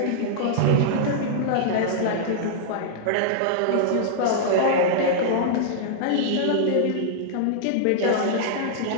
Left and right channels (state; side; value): different; both; correlation -0.01